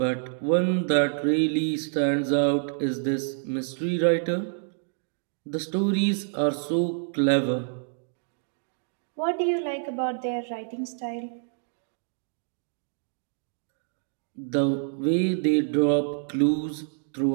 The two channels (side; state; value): left; silent; digital silence